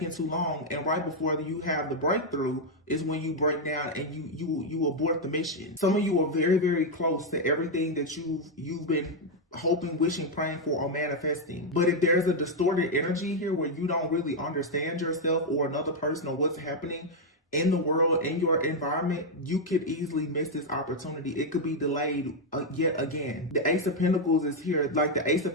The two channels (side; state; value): both; normal; correlation 0.01